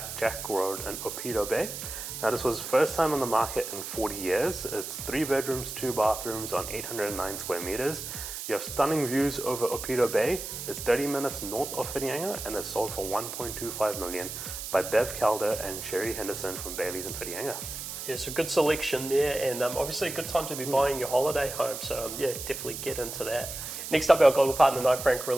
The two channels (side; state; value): right; noise; hiss, 7 dB below the sound